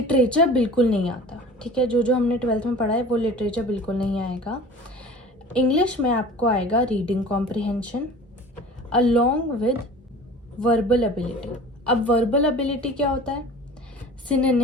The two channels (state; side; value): normal; both; correlation 0.41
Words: बिल्कुल नहीं आता. ठीक है. जो हमने 12th में पढ़ा है वो लिटरेचर बिल्कुल नहीं आएगा. इंग्लिश में आपको आएगा reading comprehension along with verbal ability. अब वर्बल एबिलिटी क्या होता है.